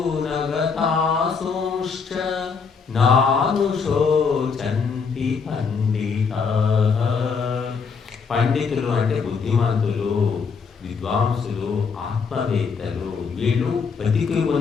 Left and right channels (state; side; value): quieter; right; 5.5 dB